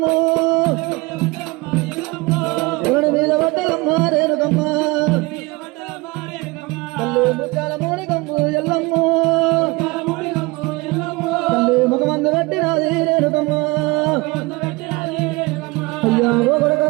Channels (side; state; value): left; quieter; 24.2 dB